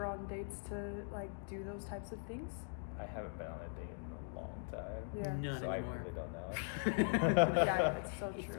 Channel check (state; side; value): silent; right; digital silence